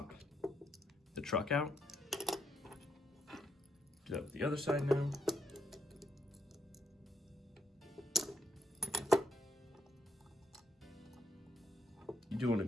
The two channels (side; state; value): both; normal; correlation 0.78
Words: the truck out. Do that with the other side now. You do want to